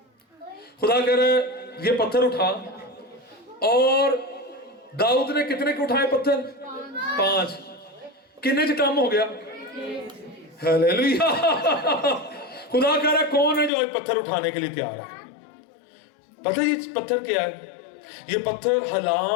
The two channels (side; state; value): right; drops out; at 13.7 s